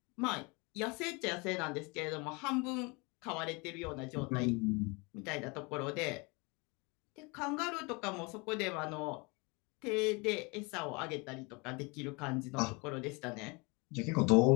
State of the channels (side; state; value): right; quieter; 28.4 dB